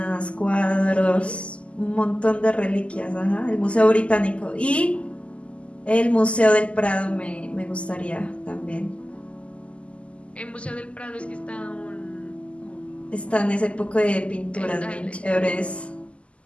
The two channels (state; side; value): late; right; 0.058 ms